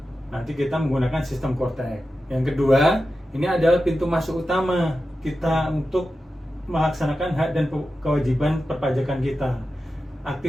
nanti kita menggunakan sistem Kortek. Yang kedua, ini adalah pintu masuk utama kita untuk melaksanakan hak dan kewajiban perpajakan kita.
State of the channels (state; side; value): normal; both; correlation 0.92